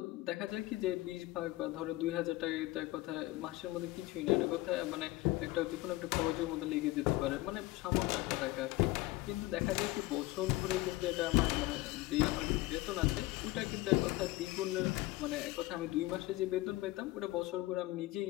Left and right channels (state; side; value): quieter; right; 18.9 dB